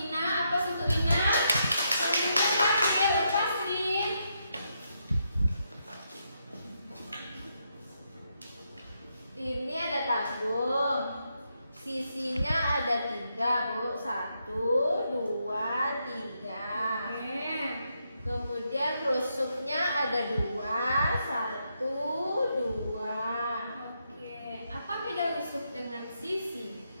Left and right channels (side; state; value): both; inverted; correlation -0.80